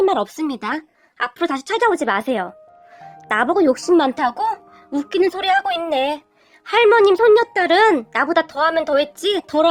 말 없습니다. 앞으로 다시 찾아오지 마세요. 나보고 욕심 많다고? 웃기는 소리 하고 있네. 할머님 손녀딸은 나보다 더하면 더했지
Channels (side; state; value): both; identical; correlation 1.00